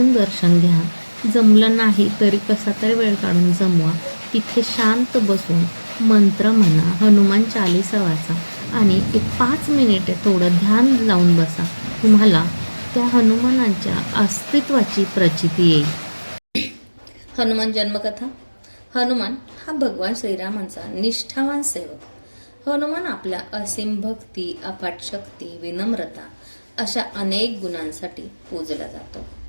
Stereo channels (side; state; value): both; inverted; correlation -1.00